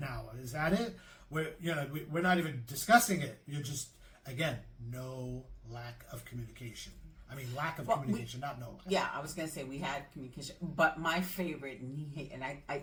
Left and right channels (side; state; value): both; identical; correlation 1.00